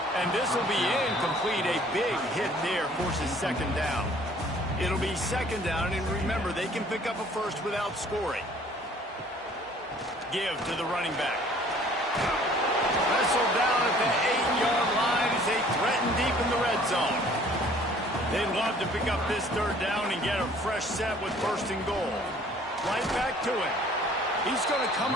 And this will be incomplete. A big hit there forces second down. It'll be second down, and remember, they can pick up a first without scoring. Give to the running back. Wrestled down at the 8-yard line as they threaten deep in the red zone. They'd love to pick up this third down and get a fresh set with first and goal. Right back to it. He's going to come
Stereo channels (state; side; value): normal; both; correlation 0.55